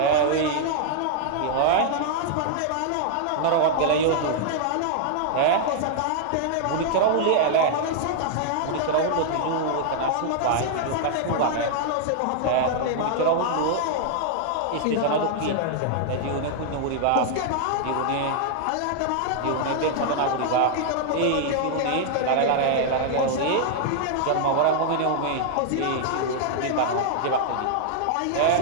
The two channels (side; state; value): both; different; correlation 0.00